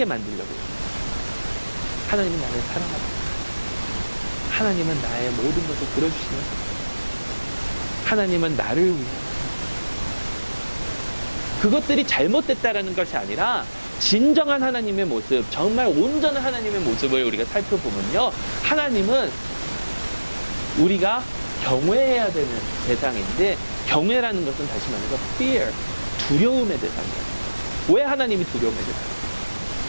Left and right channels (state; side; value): inverted; both; correlation -1.00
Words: 만들려고 해요. 하나님은 나를 사랑하다. 하나님은 나의 모든 것을 들어주시는. 하나님은 나를 위해. 그것들이 잘못됐다라는 것이 아니라 진정한 하나님의 모습, 정말 온전한 하나님의 모습을 우리가 살펴보면요, 하나님은 우리가 경외해야 되는 대상인데, 경외라는 것은 다시 말해서 fear, 두려움의 대상이에요. 왜 하나님이 두려움의 대상이에요?